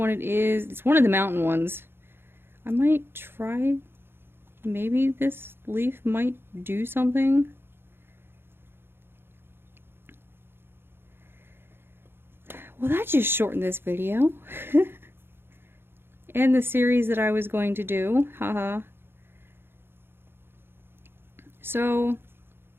it is. It's one of the mountain ones. I might try, maybe this leaf might do something. Well, that just shortened this video. And the series that I was going to do. Haha. So,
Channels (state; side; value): late; left; 0.11 ms